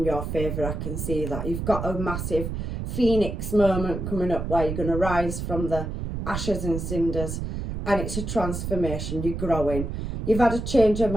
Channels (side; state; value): right; noise; rumble, 4 dB below the sound